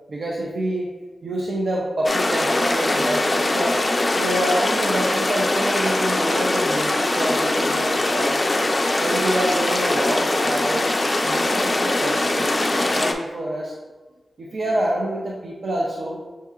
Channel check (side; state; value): both; normal; correlation 0.94